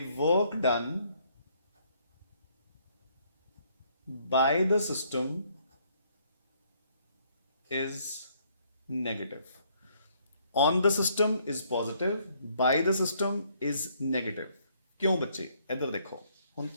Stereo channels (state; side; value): inverted; both; correlation -0.67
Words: work done by the system is negative. On the system is positive, by the system is negative. ਕਿਉਂ ਬੱਚੇ? ਇੱਧਰ ਦੇਖੋ, ਹੁਣ